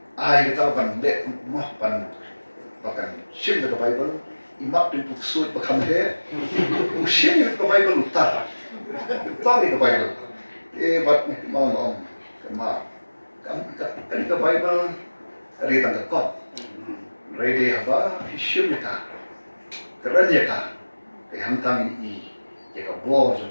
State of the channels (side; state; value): both; inverted; correlation -1.00